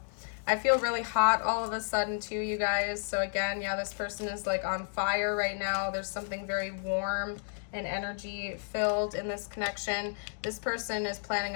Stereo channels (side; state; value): right; silent; digital silence